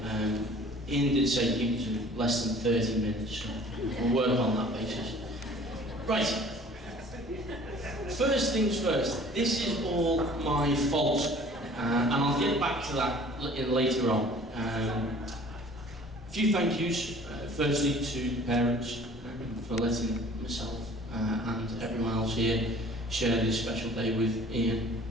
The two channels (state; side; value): normal; both; correlation 0.50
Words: Ian did say keep it to less than 30 minutes, so we'll work on that basis. Right. First things first, this is all my fault, and I'll get back to that later on. A few thank yous, firstly to the parents for letting myself and everyone else here share this special day with Ian